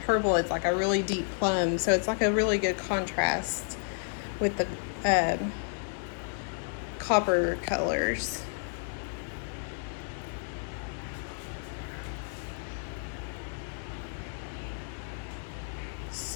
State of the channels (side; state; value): right; silent; 57 dB below the other